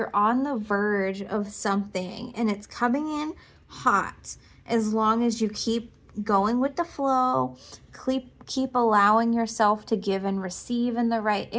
on the verge of something and it's coming in hot, as long as you keep going with the flow, keep allowing yourself to give and receive in the right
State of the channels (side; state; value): both; identical; correlation 1.00